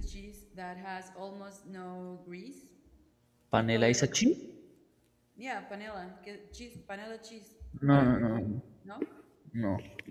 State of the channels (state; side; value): identical; both; correlation 1.00